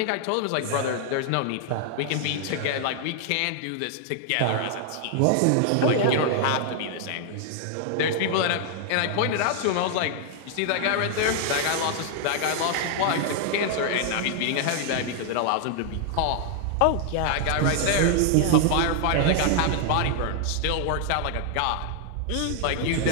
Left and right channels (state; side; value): different; both; correlation 0.00